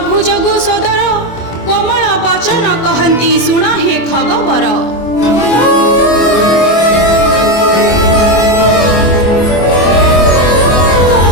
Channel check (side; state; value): right; late; 24 ms